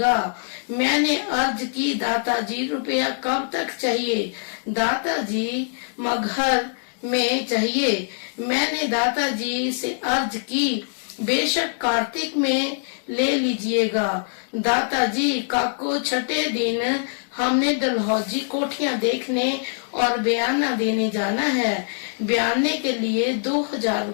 मैंने अर्ज की, दादाजी रुपया कब तक चाहिए? दादाजी, मगहर में चाहिए। मैंने दादाजी से अर्ज की, बेशक कार्तिक में ले लीजिएगा। दादाजी, काको छठे दिन हमने डलहौजी कोठियां देखने और बयाना देने जाना है। बयाने के लिए 2000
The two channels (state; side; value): silent; right; digital silence